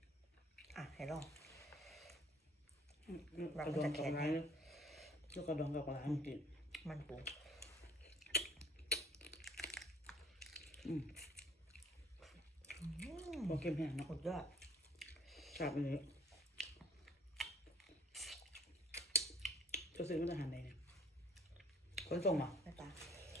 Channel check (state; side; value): normal; both; correlation 0.55